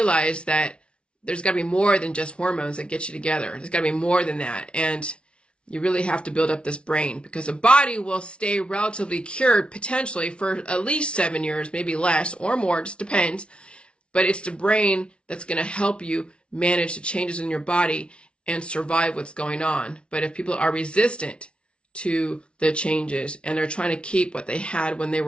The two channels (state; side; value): late; right; 0.058 ms